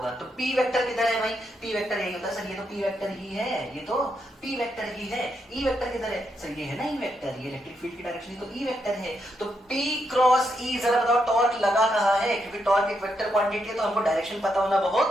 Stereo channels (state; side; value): normal; both; correlation 0.80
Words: तो पी वेक्टर किधर है भाई, पी वेक्टर यही होता है सर, ये तो पी वेक्टर ही है, ये तो पी वेक्टर ही है। ई वेक्टर किधर है सर, ये है ना ई वेक्टर, ये इलेक्ट्रिक फील्ड की डायरेक्शन तो ई वेक्टर है। तो पी क्रॉस ई, जरा बताओ टॉर्क लगा कहाँ है, क्योंकि टॉर्क एक वेक्टर क्वांटिटी है तो हमको डायरेक्शन पता होना